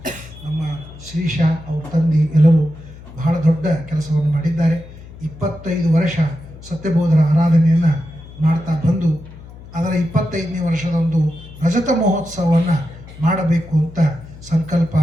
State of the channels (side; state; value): left; noise; hum, 17 dB below the sound